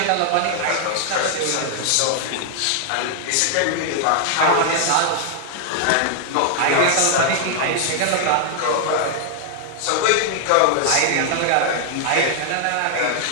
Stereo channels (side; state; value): both; different; correlation 0.00